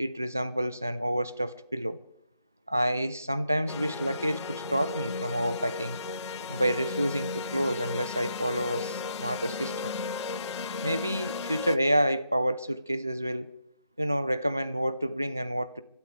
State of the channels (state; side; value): inverted; both; correlation -0.82